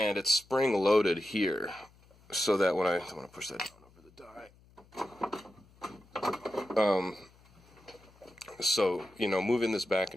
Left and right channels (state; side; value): noise; left; hum, 28 dB below the sound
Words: it's spring loaded here, so that when I want to push that down over the die. So, moving this back